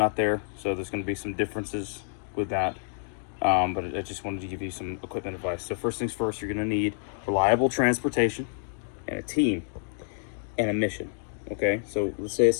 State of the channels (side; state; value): right; silent; digital silence